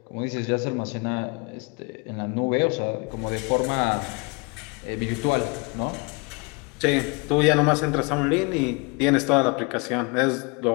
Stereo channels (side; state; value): right; quieter; 30.6 dB